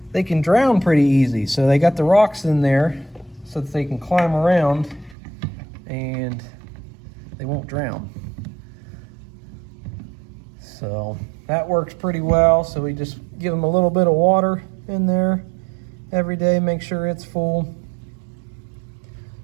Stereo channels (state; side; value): drops out; left; at 5.2 s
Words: they can drown pretty easy. So they got the rocks in there so that they can climb around and they won't drown. So that works pretty well. So we just give them a little bit of water in there every day, make sure it's full.